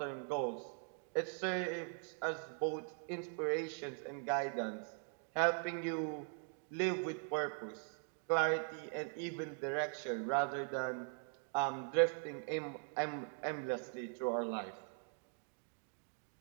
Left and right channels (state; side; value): silent; left; 50 dB below the other